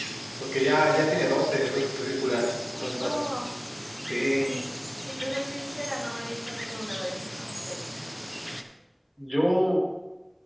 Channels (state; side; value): identical; both; correlation 1.00